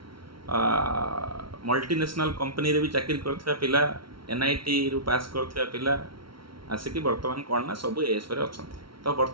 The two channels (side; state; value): left; late; 0.74 ms